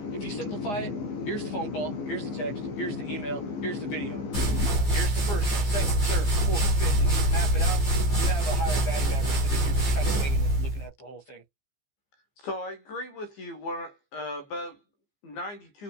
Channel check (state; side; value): late; right; 15 ms